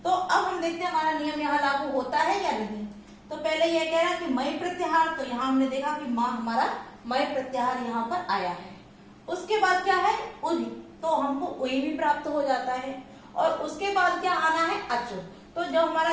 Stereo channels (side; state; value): both; identical; correlation 1.00